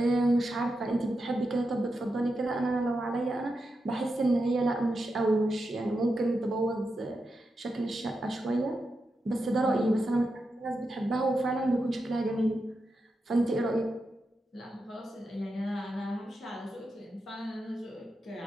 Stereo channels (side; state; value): both; normal; correlation 0.88